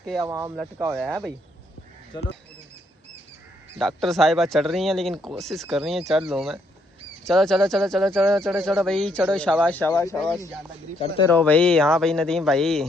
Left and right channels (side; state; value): both; normal; correlation 0.72